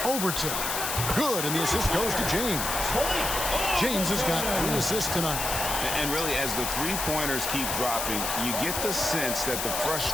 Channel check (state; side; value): noise; left; hiss, 2 dB below the sound